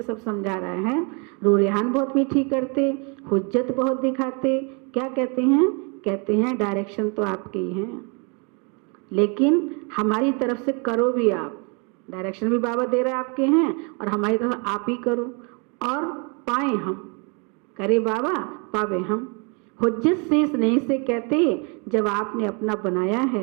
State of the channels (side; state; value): left; quieter; 33.8 dB